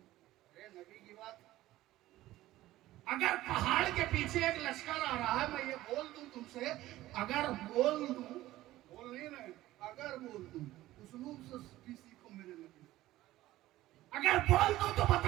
نبی کی بات. اگر پہاڑ کے پیچھے ایک لشکر آ رہا ہے، میں یہ بول دوں تم سے، اگر بول دوں، بول نہیں رہے، اگر بول دوں، اسلوب سے بھی سیکھو میرے نبی. اگر بول دوں تو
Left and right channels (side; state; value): left; quieter; 15.9 dB